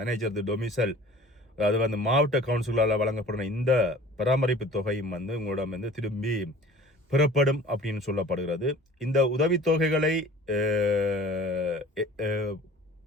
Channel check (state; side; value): normal; both; correlation 0.46